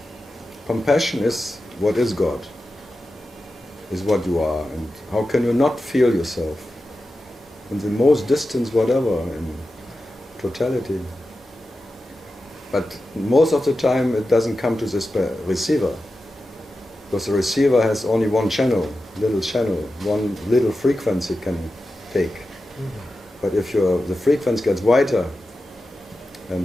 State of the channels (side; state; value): both; normal; correlation 0.92